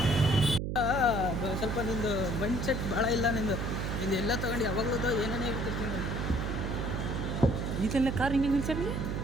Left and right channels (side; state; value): right; noise; hum, 2 dB below the sound